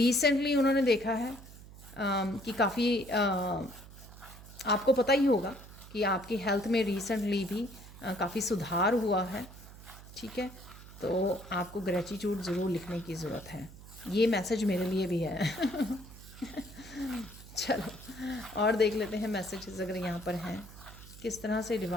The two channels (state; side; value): noise; right; hum, 17 dB below the sound